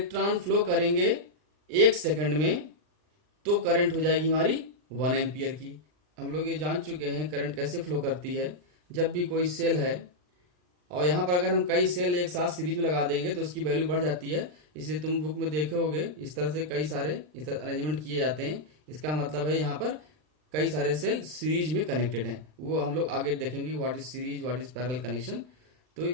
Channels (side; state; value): left; late; 39 ms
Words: flow करेंगे 1 second में, तो current हो जाएगी हमारी 1 एम्पियर की। हम लोग ये जान चुके हैं करंट कैसे फ्लो करती है। जब भी कोई सेल है और यहाँ पर अगर हम कई सेल एक साथ सीरीज में लगा देंगे तो उसकी वैल्यू बढ़ जाती है। इसलिए तुम बुक में देखे होगे इस तरह से कई सारे इस तरह अरेंजमेंट किए जाते हैं। इसका मतलब है यहाँ पर कई सारे सेल सीरीज में कनेक्टेड हैं। वो हम लोग आगे देखेंगे what is series, what is parallel connection. तो